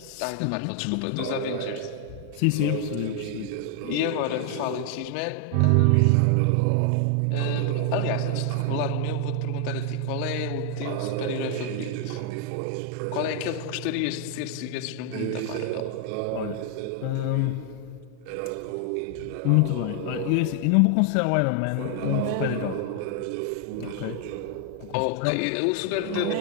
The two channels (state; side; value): different; both; correlation 0.00